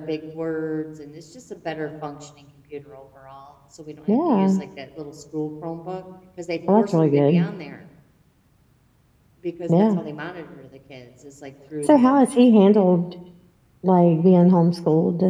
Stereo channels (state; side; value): identical; both; correlation 1.00